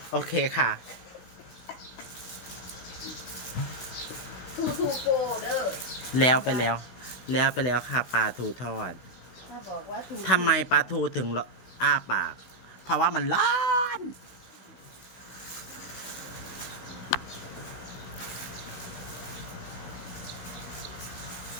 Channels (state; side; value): late; right; 16 ms